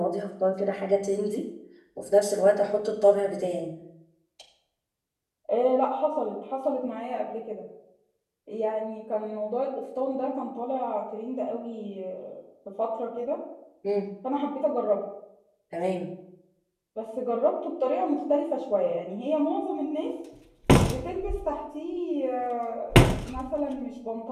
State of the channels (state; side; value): identical; both; correlation 1.00